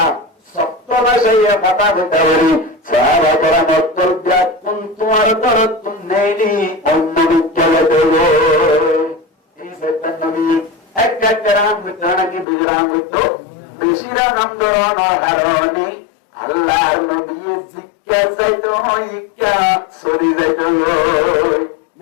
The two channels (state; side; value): drops out; right; at 12.5 s